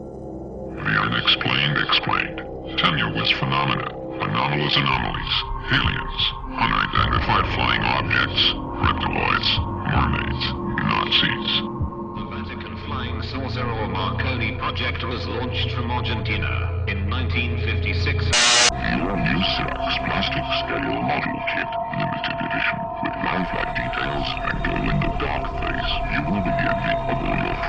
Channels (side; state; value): both; identical; correlation 1.00